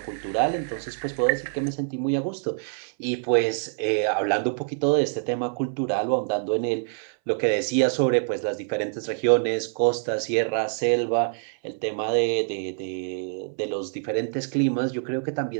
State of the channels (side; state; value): left; silent; 61 dB below the other